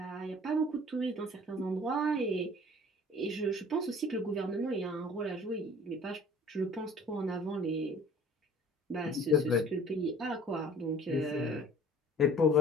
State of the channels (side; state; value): both; normal; correlation 0.49